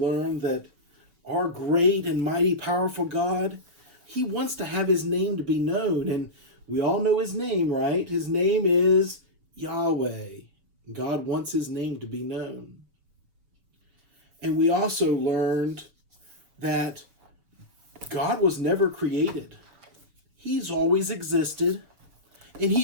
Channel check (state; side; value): late; left; 5.8 ms